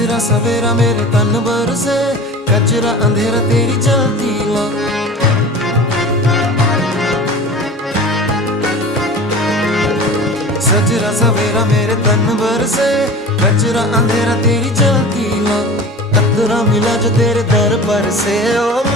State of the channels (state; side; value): normal; both; correlation 0.37